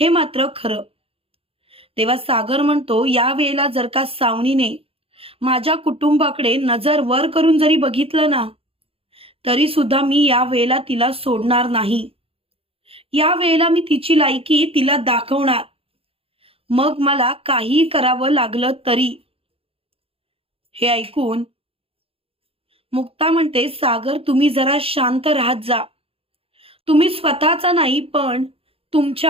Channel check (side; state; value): left; late; 0.27 ms